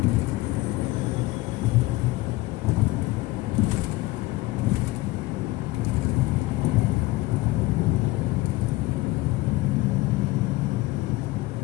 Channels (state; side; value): quieter; right; 19.2 dB